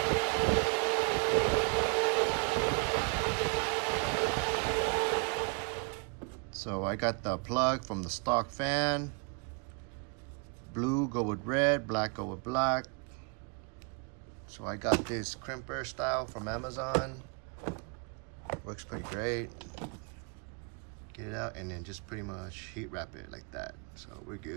So I got the plug from the stock fan. Blue go with red, black go with black. So I got this crimper style from Amazon. Works pretty great. Get it out and then just pretty much heat wrap it like that, so we're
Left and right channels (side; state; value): left; quieter; 36.3 dB